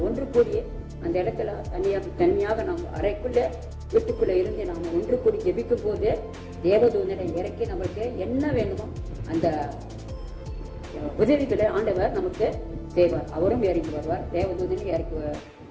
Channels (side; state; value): both; identical; correlation 1.00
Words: ஒன்று கூடி அந்த இடத்துல தனியாக நம்ம அறைக்குள்ள வீட்டுக்குள்ள இருந்து நாம ஒன்று கூடி ஜெபிக்கும் போது தேவதூதனை இறக்கி நம்மளுக்கு என்ன வேணுமோ அந்த உதவிகளை ஆண்டவர் நமக்கு செய்வார். அவரும் இறங்கி வருவார், தேவதூதனை இறக்கி